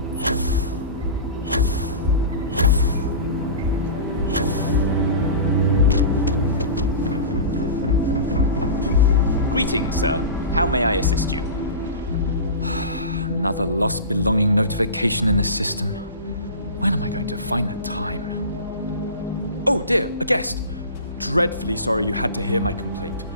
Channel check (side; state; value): both; inverted; correlation -0.32